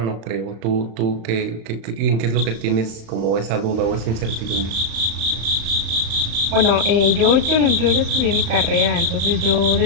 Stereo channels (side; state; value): left; late; 35 ms